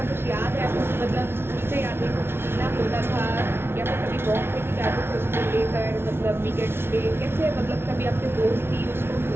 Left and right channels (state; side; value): late; left; 0.12 ms